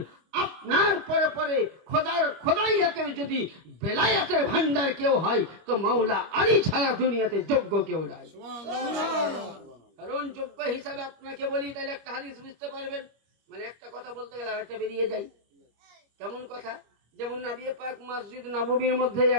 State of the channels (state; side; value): late; left; 25 ms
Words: আপনার পরে পরে খোদাইয়াতের যদি বেলায়াতের ভান্ডার কেউ হয় তো মাওলা আলী ছাড়া দুনিয়াতে যোগ্য কেউ নাই। কারণ যোগ্য হিসাবে আপনাকে বলি, তাহলে একটা হাদিস বুঝতে পারবেন। মানে একটা কথা বলতে গেলে আরেকটা বেরিয়ে যায়। কেমন কথা? যেমন নবী পাক মসজিদ নববীর মধ্যে